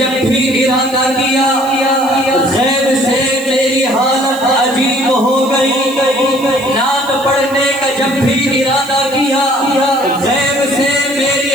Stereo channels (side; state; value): right; noise; hiss, 19 dB below the sound